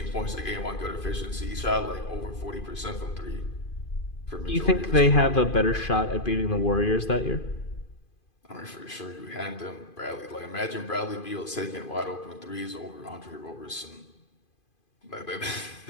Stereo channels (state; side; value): late; right; 2.5 ms